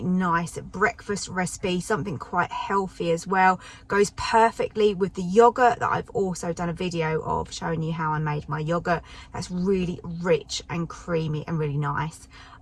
nice breakfast recipe, something quite healthy as well. Goes perfectly with the yogurt that I've also done a video of showing you how I made my yogurt. That's really rich and creamy and really nice.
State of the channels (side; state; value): both; identical; correlation 1.00